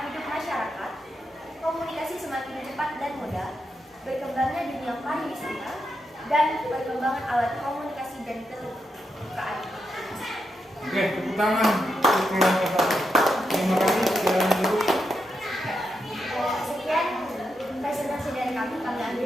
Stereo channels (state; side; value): normal; both; correlation 0.85